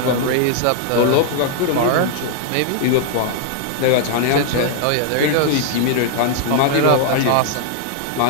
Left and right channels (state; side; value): different; both; correlation 0.00